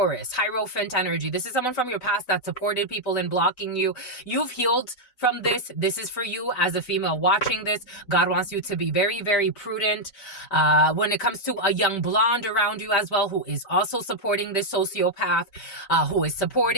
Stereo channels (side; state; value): right; late; 3.9 ms